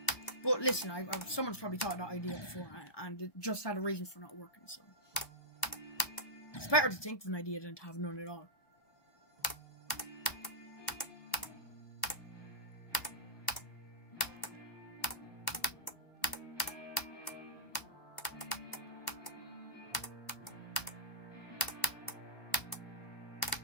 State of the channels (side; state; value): right; late; 1.1 ms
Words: But listen, someone's probably thought of that idea before, and it just had a reason for not working, so it's better to think of an idea than to have none at all.